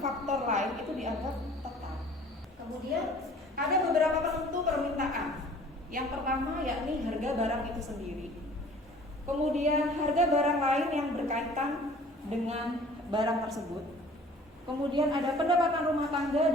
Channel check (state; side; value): normal; both; correlation 0.50